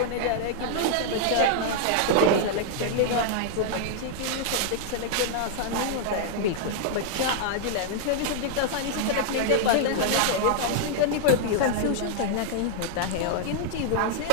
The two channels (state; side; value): different; both; correlation -0.01